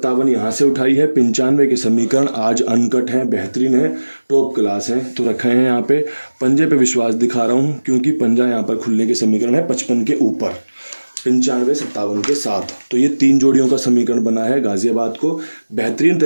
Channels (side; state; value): both; inverted; correlation -1.00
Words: यहाँ से उठाई है, 95 के समीकरण आज अनकट हैं, बेहतरीन है, टॉप क्लास हैं, तो रखे हैं यहाँ पे। पंजे पे विश्वास दिखा रहा हूँ क्योंकि पंजा यहाँ पर खुलने के समीकरण है 55 के ऊपर, 95 57 के साथ। तो ये 3 जोड़ियों का समीकरण बना है, गाजियाबाद को बेहतरीन